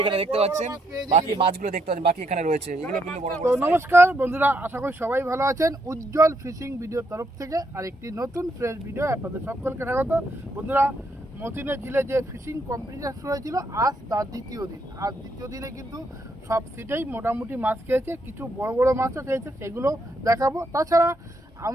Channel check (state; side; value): normal; both; correlation 0.76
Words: এখানে দেখতে পাচ্ছেন। বাকি মাছগুলো দেখতে পাচ্ছেন, বাকি এখানে রয়েছে, এগুলো কিন্তু বড় বড়। নমস্কার বন্ধুরা, আশা করি সবাই ভালো আছেন। উজ্জ্বল ফিশিং ভিডিওর তরফ থেকে আরেকটি নতুন ফ্রেশ ভিডিও আপনাদের সকলকে স্বাগত। বন্ধুরা, মতিনের ঝিলে যে ফিশিং কম্পিটিশন শুরু হয়েছিল, আজ তার দ্বিতীয় দিন। আজ দ্বিতীয় দিনে কিন্তু সব সিটেই মোটামুটি মাছ খেয়েছে, কিছু বড় বড় মাছও খেয়েছে, সেগুলো দেখাবো। তাছাড়া